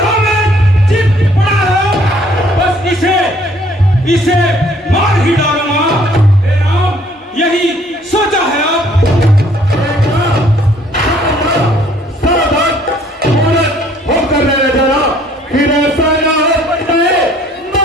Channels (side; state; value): both; normal; correlation 0.60